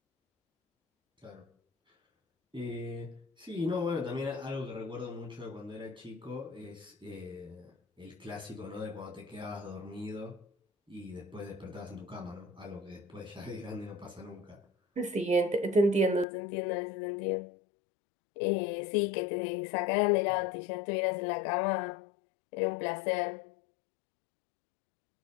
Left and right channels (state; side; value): drops out; right; at 16.2 s